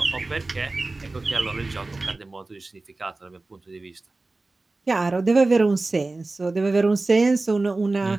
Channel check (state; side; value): quieter; left; 3.3 dB